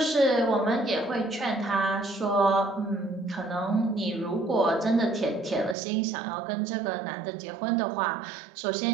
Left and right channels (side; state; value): left; drops out; at 5.8 s